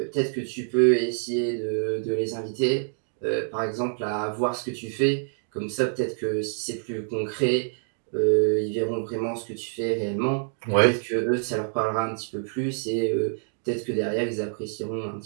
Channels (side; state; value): left; silent; digital silence